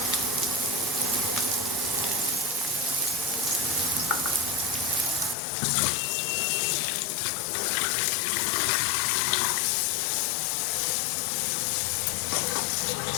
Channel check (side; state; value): right; drops out; at 5.4 s